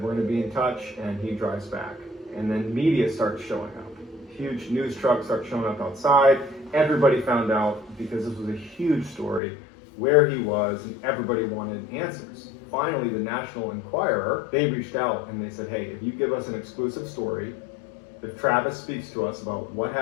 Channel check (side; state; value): right; drops out; at 9.4 s